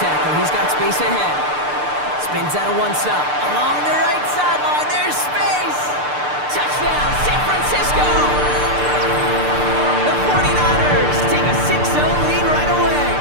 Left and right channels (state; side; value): late; left; 6.7 ms